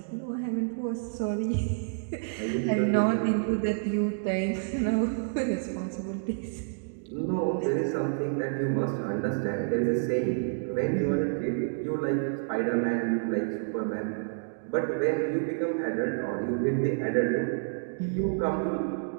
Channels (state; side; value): silent; left; digital silence